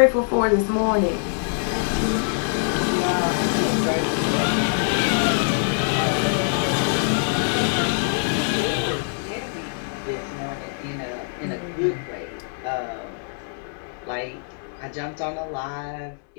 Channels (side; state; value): right; silent; digital silence